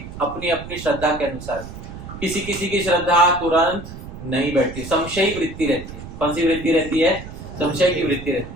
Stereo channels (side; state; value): right; noise; rumble, 12 dB below the sound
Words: अपनी अपनी श्रद्धा के अनुसार। किसी किसी की श्रद्धा तुरंत नहीं बैठती, संशयी वृत्ति रहती है। कौन सी वृत्ति रहती है? संशय की वृत्ति